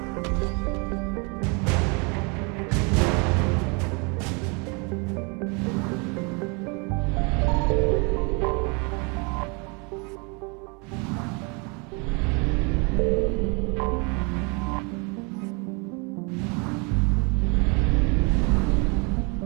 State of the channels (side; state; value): left; quieter; 32.1 dB